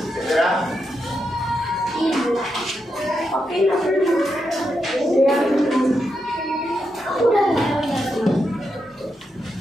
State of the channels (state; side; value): normal; both; correlation 0.84